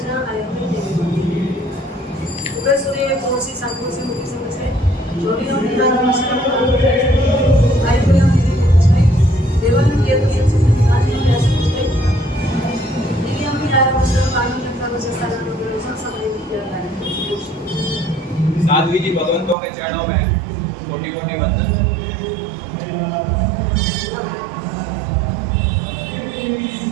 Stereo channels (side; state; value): left; drops out; at 19.6 s